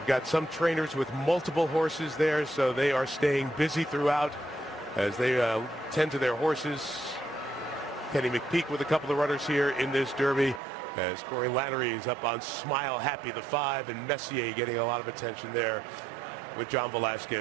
got some trainers with multiple horses there, so they are staying busy throughout as they tend to their horses. Kenny McPeak with a couple of runners here in this Derby, as Corey Lannery is up on Smile Happy the 5, and Messier getting a lot of attention there with John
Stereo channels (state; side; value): drops out; left; at 10.6 s